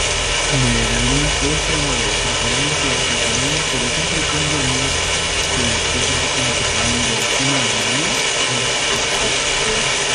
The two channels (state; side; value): identical; both; correlation 1.00